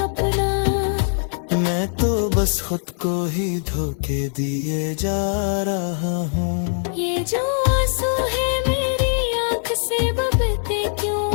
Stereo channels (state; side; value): silent; right; digital silence